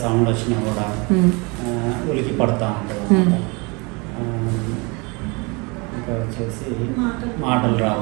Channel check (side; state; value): left; quieter; 28.7 dB